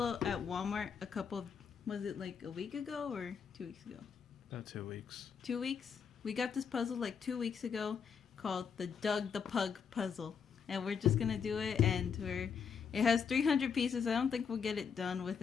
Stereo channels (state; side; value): quieter; right; 6.6 dB